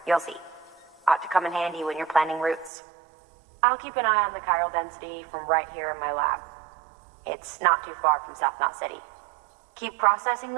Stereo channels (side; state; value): left; drops out; at 2.7 s